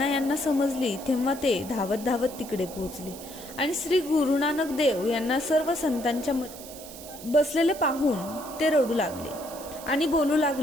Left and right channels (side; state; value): right; noise; hiss, 15 dB below the sound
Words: यांना समजली तेव्हा ते धावत धावत तिकडे पोहोचले आणि श्री गुरु नानक देव यांना सर्व संतांच्या बसलेले पाहून ते रडू लागले आणि बोलू